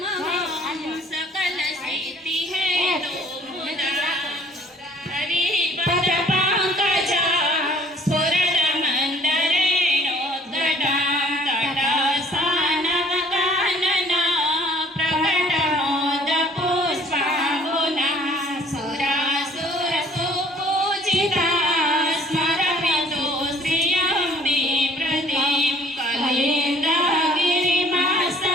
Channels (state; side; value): normal; both; correlation 0.56